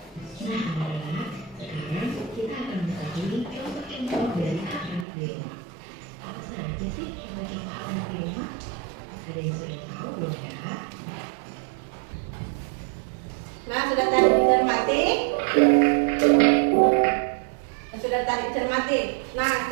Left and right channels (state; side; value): drops out; left; at 5.1 s